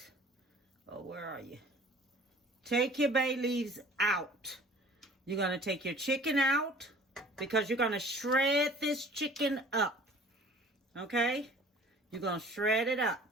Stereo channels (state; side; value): normal; both; correlation 0.49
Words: oh, where are you? Take your bay leaves out. You're going to take your chicken out because you're going to shred this chicken up, okay? You're going to shred it